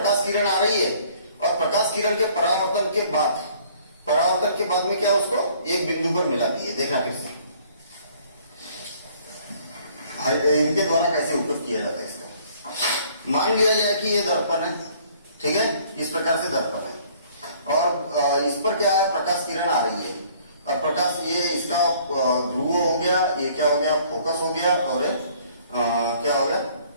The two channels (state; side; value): inverted; both; correlation -0.58